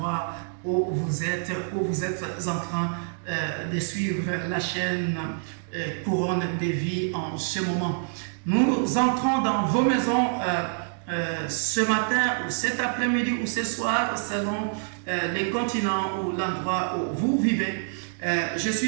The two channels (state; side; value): silent; left; digital silence